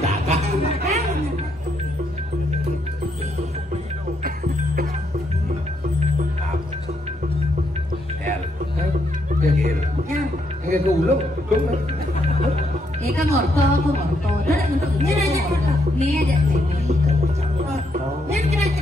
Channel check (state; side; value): normal; both; correlation 0.76